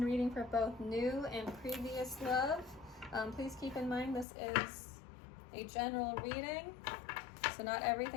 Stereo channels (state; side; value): drops out; right; at 4.2 s